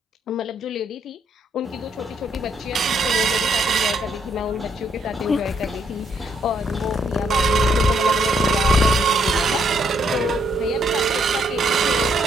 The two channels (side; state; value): both; normal; correlation 0.72